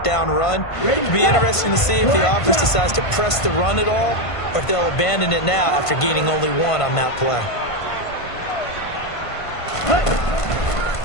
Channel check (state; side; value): late; right; 1.5 ms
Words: down run. It'll be interesting to see if the offense decides to press the run at all, or if they'll abandon it now after gaining only 1 on that play.